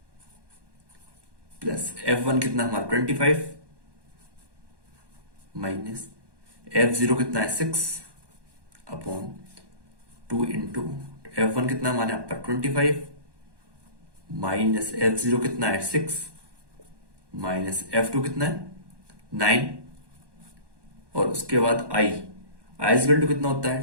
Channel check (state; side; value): late; left; 1.1 ms